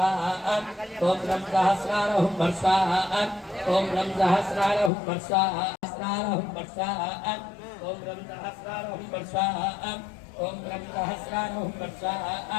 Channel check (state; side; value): drops out; right; at 4.9 s